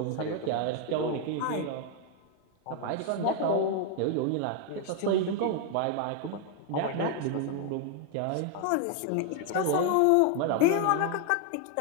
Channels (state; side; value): different; both; correlation 0.00